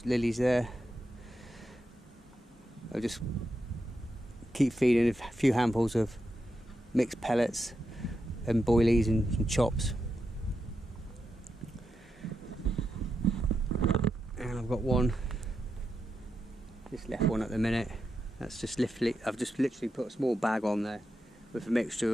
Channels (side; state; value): both; normal; correlation 0.86